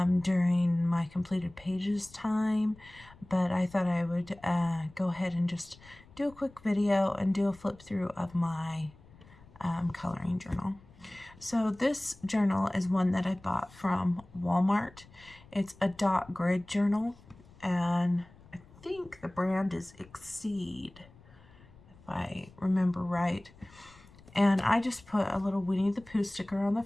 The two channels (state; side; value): noise; left; rumble, 24 dB below the sound